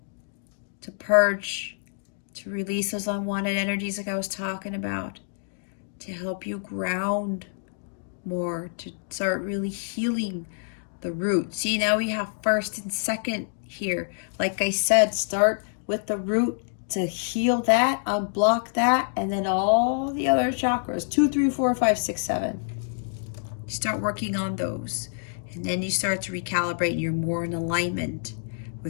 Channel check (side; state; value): right; silent; digital silence